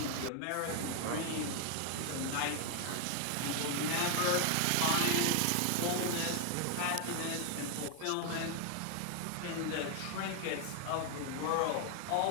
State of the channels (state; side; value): different; both; correlation 0.00